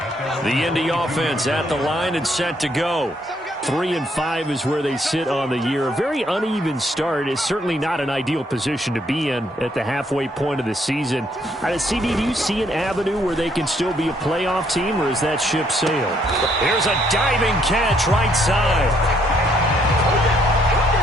The Indy offense at the line and set to go. 3-5 is where they sit on the year. A very uneven start is certainly not an ideal position to be in at the halfway point of the season. CD, do you see an avenue where they can still be a playoff team, or is that ship sailed? Here's a diving catch right side.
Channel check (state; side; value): normal; both; correlation 0.70